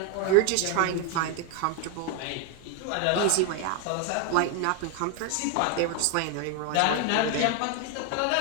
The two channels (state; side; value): different; both; correlation 0.01